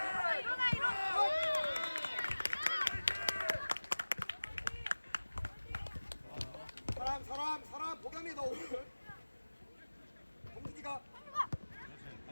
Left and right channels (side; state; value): both; inverted; correlation -1.00